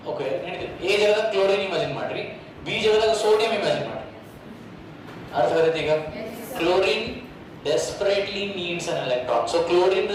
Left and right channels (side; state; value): both; identical; correlation 1.00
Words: ಓಕೆ ನಡೀತದೆ ಎ ಜಾಗದಾಗ ಕ್ಲೋರಿನ್ ಇಮ್ಯಾಜಿನ್ ಮಾಡ್ರಿ ಬಿ ಜಾಗದಾಗ ಸೋಡಿಯಂ ಇಮ್ಯಾಜಿನ್ ಮಾಡ್ರಿ ಅರ್ಥ ಆಗತ್ತೆ ಈಗ chlorine desperately needs an electron so chlorine